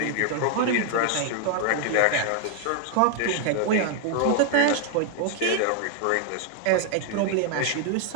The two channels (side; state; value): both; different; correlation 0.00